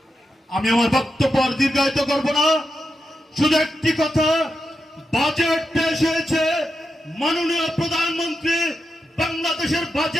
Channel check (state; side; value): normal; both; correlation 0.87